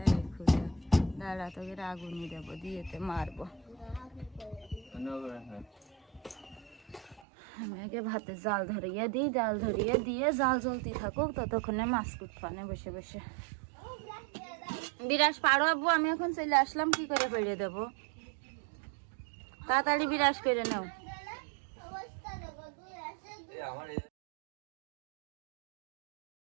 খুঁজে দাঁড়া তোকে আগুনই দেবো, দিয়েতে মারবো। আমি আগে ভাতে জাল ধরিয়ে দিই, জাল ধরিয়ে দিয়ে জাল জ্বলতে থাকুক, ততক্ষণে মাছ কুটফানে বসে বসে। বিরাস পারো আব্বু, আমি এখন চলে আসলাম, কি করে পেড়ে দেবো? তাড়াতাড়ি বিরাস করে নাও। আমার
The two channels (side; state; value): left; drops out; at 7.2 s